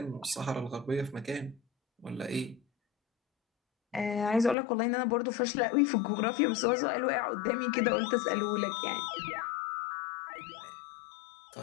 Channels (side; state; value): right; drops out; at 4.5 s